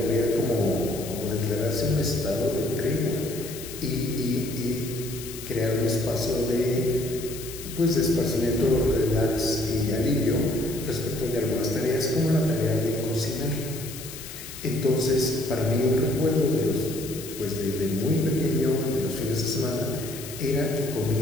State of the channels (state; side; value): noise; left; hiss, 12 dB below the sound